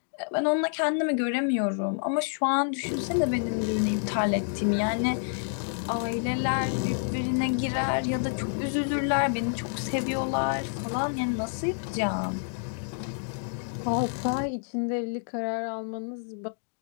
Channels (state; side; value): silent; right; digital silence